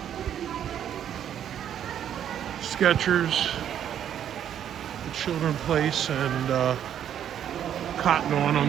Skechers, the Children Place, and Cotton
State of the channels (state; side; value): quieter; left; 9.8 dB